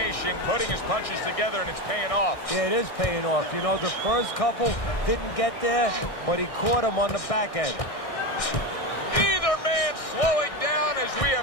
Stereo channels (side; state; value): right; late; 1.6 ms